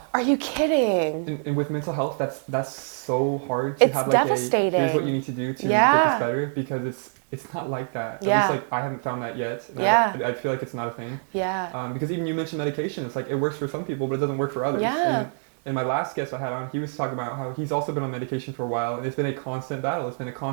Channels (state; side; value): silent; left; 57 dB below the other